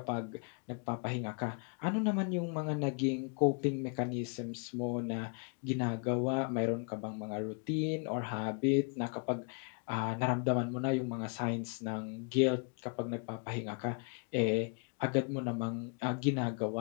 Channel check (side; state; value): right; quieter; 38.1 dB